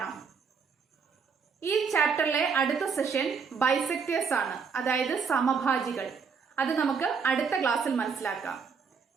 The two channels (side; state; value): left; quieter; 5.8 dB